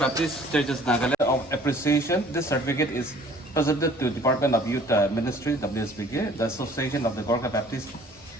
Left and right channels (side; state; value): both; normal; correlation 0.53